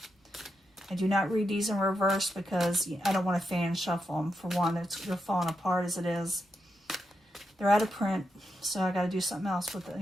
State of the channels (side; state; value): both; normal; correlation 0.85